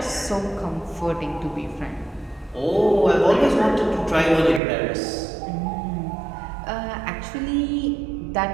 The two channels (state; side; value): drops out; left; at 4.6 s